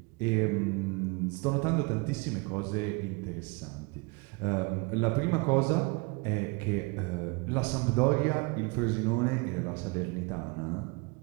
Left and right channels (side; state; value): left; quieter; 28.8 dB